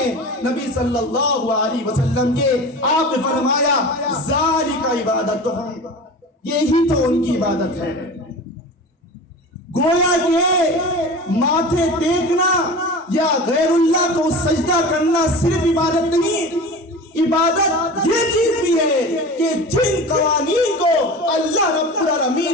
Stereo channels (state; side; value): normal; both; correlation 0.33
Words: نبی صلی اللہ علیہ وسلم کے، آپ نے فرمایا ذالک عبادتہم، یہی تو ان کی عبادت ہے۔ گویا کہ ماتھے ٹیکنا یا غیر اللہ کو سجدہ کرنا صرف عبادت نہیں، عبادت یہ چیز بھی ہے کہ جن قوانین کو اللہ رب